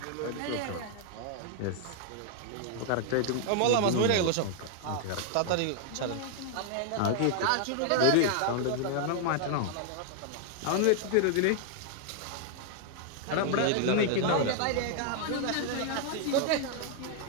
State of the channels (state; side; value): different; both; correlation 0.00